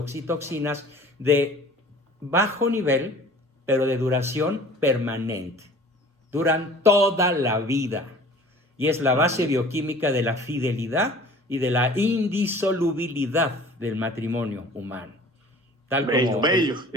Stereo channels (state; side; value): normal; both; correlation 0.46